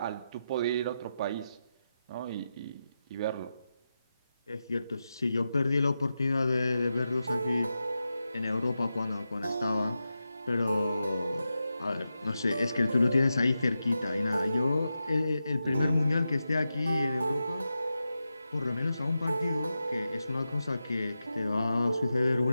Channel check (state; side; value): inverted; both; correlation -0.89